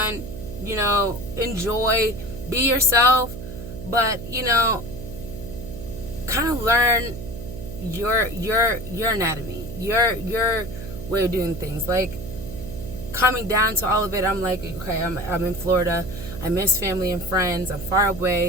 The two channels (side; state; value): right; noise; hum, 10 dB below the sound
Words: enjoy, be yourself, but kind of learn your anatomy, your way of doing things. Like, coming down to all of it, I'm like, okay, I'm in Florida. I miss family and friends. I'm far